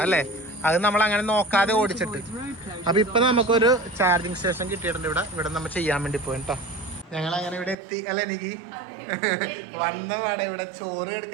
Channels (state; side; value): drops out; left; at 7.8 s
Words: അല്ലേ. അത് നമ്മൾ അങ്ങനെ നോക്കാതെ ഓടിച്ചിട്ട്. അപ്പോൾ ഇപ്പം നമുക്കൊരു ചാർജിങ് സ്റ്റേഷൻ കിട്ടിയിട്ടുണ്ട് ഇവിടെ നമ്മൾ ചെയ്യാൻ വേണ്ടി പോയി കേട്ടോ. ഞങ്ങൾ അങ്ങനെ ഇവിടെ എത്തി അല്ലേ. എനിക്ക് വന്ന പാടെ ഇവിടെ ചോറ്